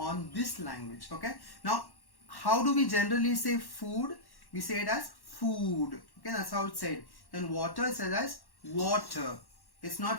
this language. Okay. Now, how do we generally say food? We say it as food. Okay, that's how it's said. Then water is said as water. It's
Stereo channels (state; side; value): late; right; 1.1 ms